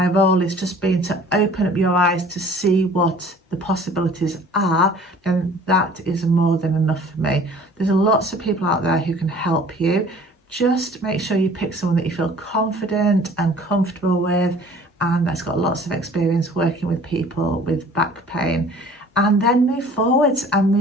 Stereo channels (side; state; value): both; normal; correlation 0.50